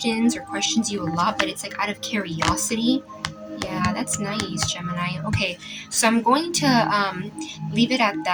or questions you a lot, but it's like out of curiosity. Yeah, that's nice, Gemini. Okay, so I'm going to leave it at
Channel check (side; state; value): both; identical; correlation 1.00